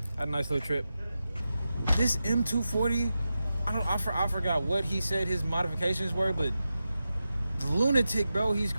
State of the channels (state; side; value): inverted; both; correlation -0.91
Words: had a nice little trip. This M240, I forgot what he said his modifications were, but the lunatic, bro, he's